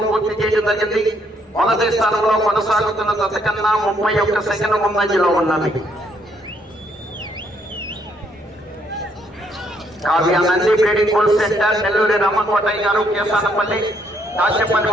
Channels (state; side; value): normal; both; correlation 0.71